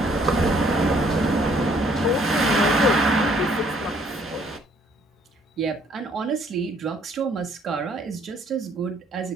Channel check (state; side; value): normal; both; correlation 0.63